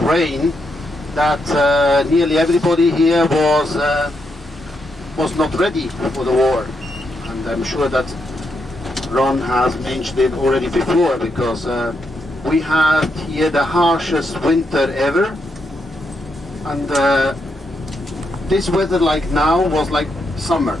that nearly everybody here was not ready for the war, and I'm sure that Ron has mentioned it already before, because we had here the harshest winter ever, and this weather like now was like summer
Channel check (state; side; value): normal; both; correlation 0.81